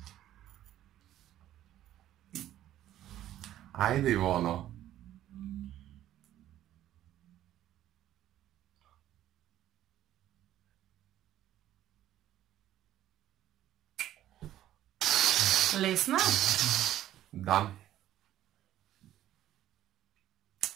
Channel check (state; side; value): quieter; left; 12.8 dB